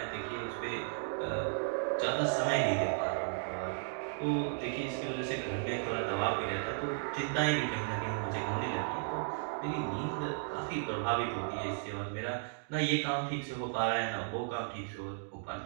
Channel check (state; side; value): silent; left; digital silence